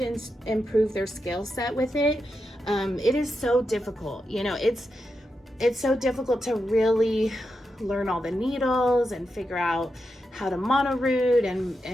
improve their skill set with it. It is so difficult. You know, it's so difficult to really learn all the needles and figure out how to mono root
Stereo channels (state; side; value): normal; both; correlation 0.87